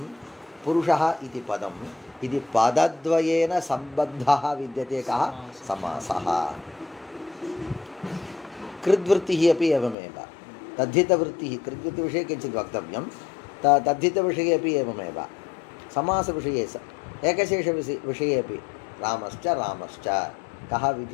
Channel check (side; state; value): right; drops out; at 10.0 s